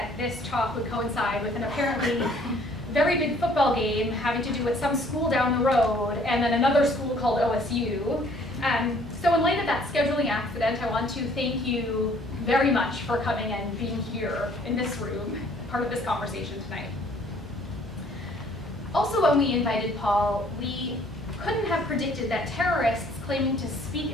this talk would coincide with an apparently very big football game having to do with some school down the road and then another school called OSU. So in light of that scheduling accident, I want to thank you very much for coming and being here in this room, part of this conversation tonight. Also, when we invited Paul, we couldn't have predicted that terrorists claiming to speak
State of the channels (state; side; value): noise; right; hum, 21 dB below the sound